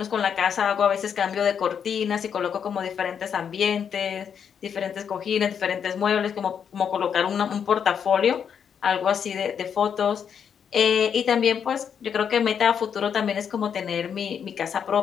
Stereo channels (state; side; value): quieter; right; 7.6 dB